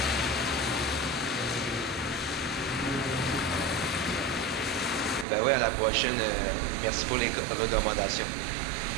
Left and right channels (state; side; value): drops out; left; at 5.2 s